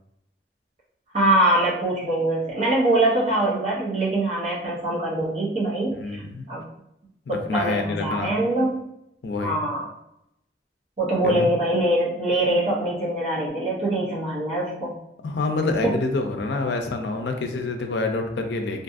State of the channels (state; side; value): normal; both; correlation 0.36